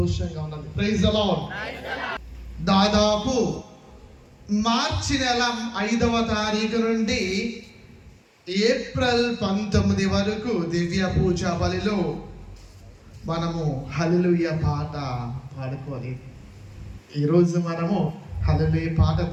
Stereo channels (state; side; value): identical; both; correlation 1.00